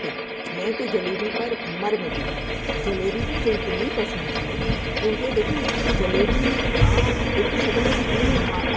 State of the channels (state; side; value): identical; both; correlation 1.00